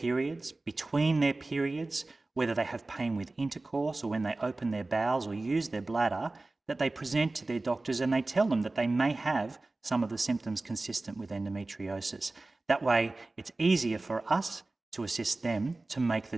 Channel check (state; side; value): quieter; left; 3.1 dB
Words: between their periods, whether they have pain with intercourse or when they open their bowels or use their bladder, that they present to their doctors and they tell them that they may have some of the symptoms consistent with endometriosis. That way, it's easier for us to assist them to make